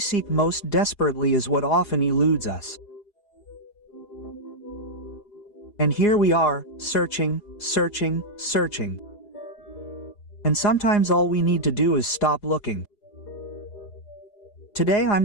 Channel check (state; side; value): late; right; 4.9 ms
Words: most desperately is what often eludes us. And here we are, searching. And sometimes all we need to do is stop looking. Today I'm